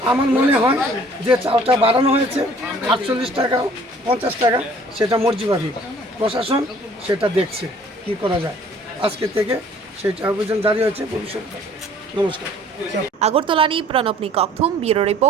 আমার মনে হয় যে চালটা বাড়ানো হয়েছে 48 টাকা 50 টাকা সেটা মর্জিবাদী প্রশাসন সেটা দেখছে কি করা যায় আজকে থেকে সেটা অভিযান জারি হয়েছে ভবিষ্যৎ নমস্কার আগরতলানি প্রণবনি ককথুম ব্যুরো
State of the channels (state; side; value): normal; both; correlation 0.54